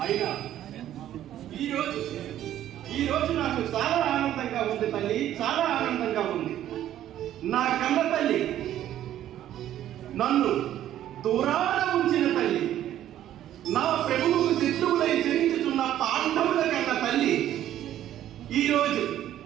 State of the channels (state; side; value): quieter; left; 12.0 dB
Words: అయినా ఈ రోజు నాకు చాలా ఆనందంగా ఉంది తల్లి, చాలా ఆనందంగా ఉంది. నా కన్న తల్లి, నన్ను దూరాన ఉంచిన తల్లి, నా ప్రభువుకు శత్రువులై జరించుతున్న పాండవుల కన్న తల్లి ఈరోజు